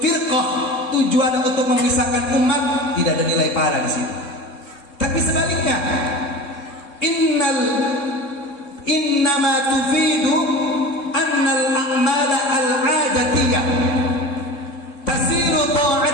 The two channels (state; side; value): late; right; 3.7 ms